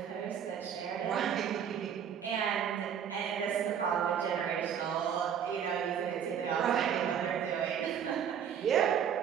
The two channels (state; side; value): quieter; left; 8.4 dB